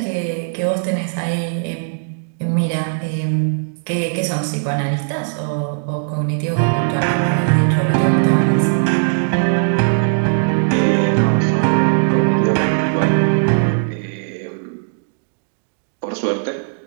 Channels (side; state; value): left; silent; digital silence